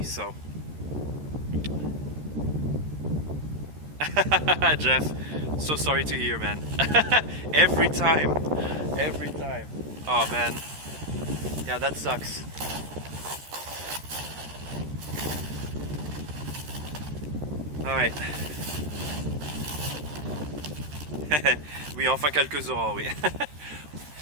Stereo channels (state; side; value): late; left; 13 ms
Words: So Jeff, so sorry to hear, man. every time. Oh man, yeah, that sucks. Alright. Oui, enfin quelques auras, oui.